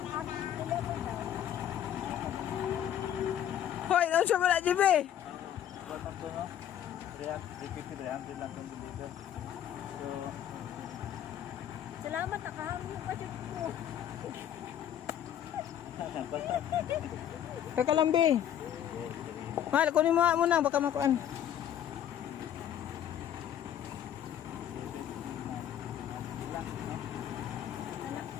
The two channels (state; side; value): quieter; right; 10.4 dB